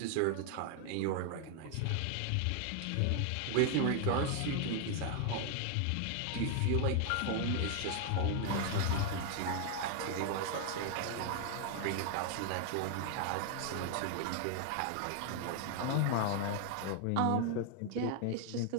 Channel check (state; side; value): different; both; correlation 0.00